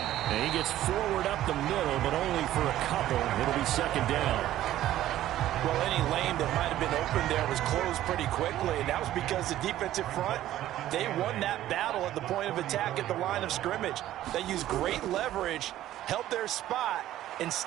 And he gets forward up the middle, but only for a couple. It'll be 2nd down. Well, any lane that might have been open there was closed pretty quickly, and that was because the defensive front, they won that battle at the point of attack at the line of scrimmage. They used great leverage, held their spot, and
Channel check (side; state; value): left; quieter; 13.5 dB